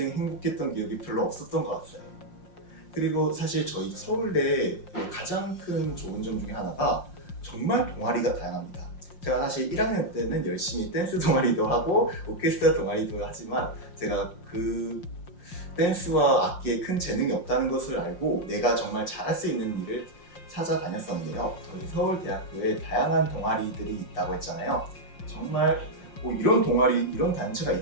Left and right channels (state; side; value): late; right; 5.6 ms